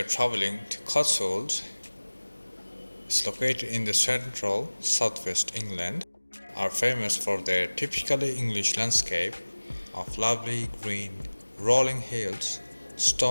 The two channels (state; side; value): inverted; both; correlation -1.00